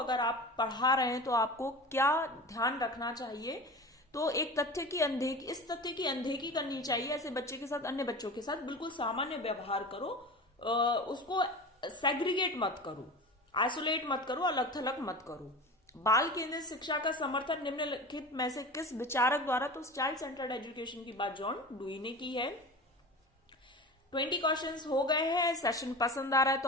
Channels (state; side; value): normal; both; correlation 0.32